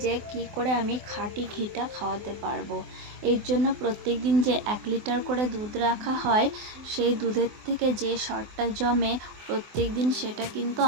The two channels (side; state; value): left; late; 24 ms